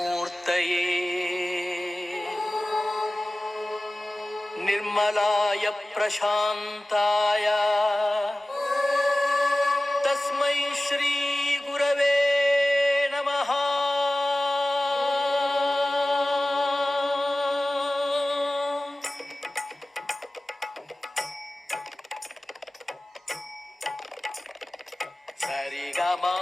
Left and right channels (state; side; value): normal; both; correlation 0.96